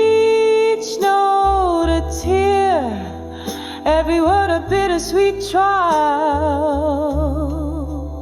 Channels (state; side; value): identical; both; correlation 1.00